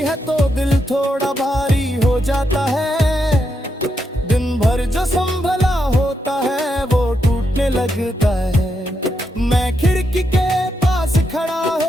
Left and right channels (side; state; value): both; normal; correlation 0.82